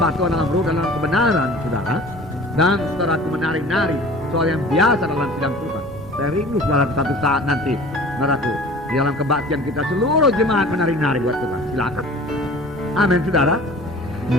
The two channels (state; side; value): normal; both; correlation 0.44